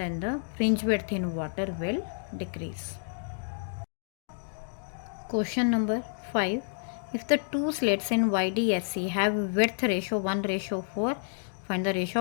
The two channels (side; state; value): right; silent; digital silence